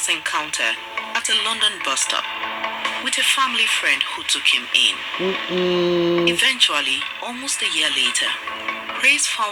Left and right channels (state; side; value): identical; both; correlation 1.00